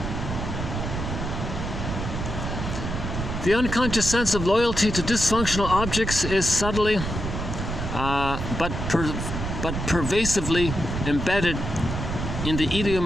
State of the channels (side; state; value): right; noise; rumble, 4 dB below the sound